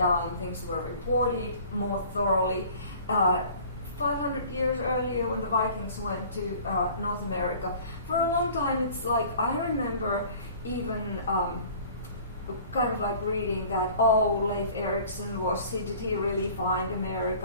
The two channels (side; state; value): both; inverted; correlation -0.48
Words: things were reported more thoroughly. 500 years earlier, when the Vikings went to North America, for a long time, it's like, I remember even kind of like reading that, Leif Erikson did he really find